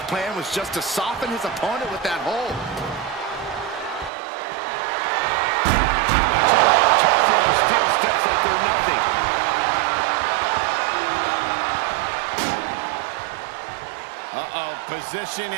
plan was just to soften his opponent with that hold. Tossing those steel steps like they're nothing. Position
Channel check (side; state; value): left; drops out; at 4.1 s